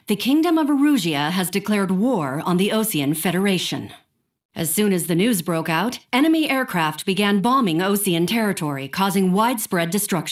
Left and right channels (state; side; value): identical; both; correlation 1.00